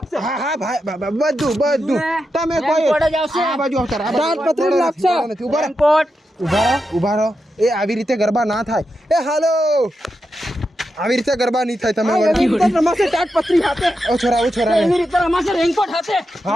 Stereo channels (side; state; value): both; normal; correlation 0.87